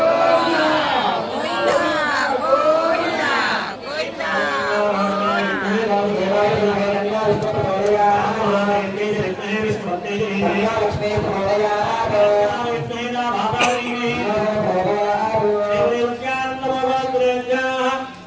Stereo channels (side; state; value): both; identical; correlation 1.00